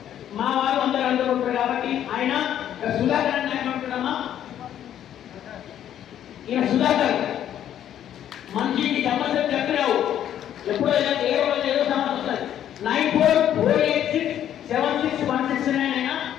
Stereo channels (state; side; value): quieter; right; 10.6 dB